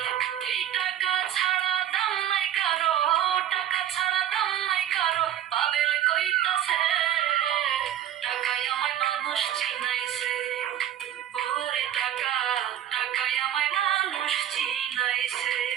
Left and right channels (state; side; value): quieter; left; 11.1 dB